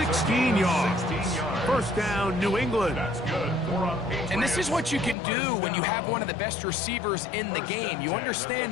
yards. First down, New England. That's good. And this is what you can do when you have one of the best receivers in the game. You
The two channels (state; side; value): drops out; right; at 5.2 s